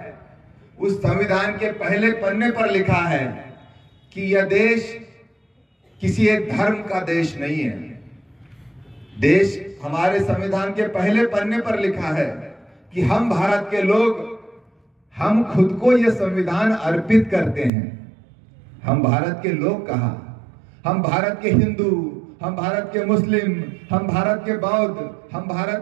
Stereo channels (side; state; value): left; drops out; at 17.7 s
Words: उस संविधान के पहले पन्ने पर लिखा है कि यह देश किसी एक धर्म का देश नहीं है। देश हमारे संविधान के पहले पन्ने पर लिखा है कि हम भारत के लोग, हम खुद को यह संविधान अर्पित करते हैं। हम भारत के लोग कहा, हम भारत के हिंदू, हम भारत के मुस्लिम, हम भारत के बौद्ध, हम